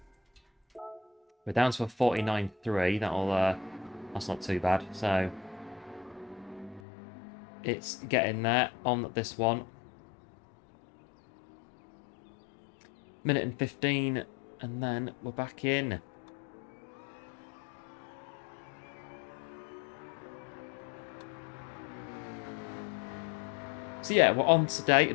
We're down to a 49.3. That's not too bad. So it's getting there on this one. Minute and 15, and then we're back in. So yeah, we're on today a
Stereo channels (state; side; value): drops out; right; at 6.8 s